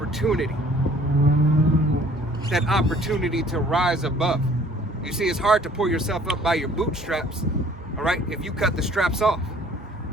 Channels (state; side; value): normal; both; correlation 0.55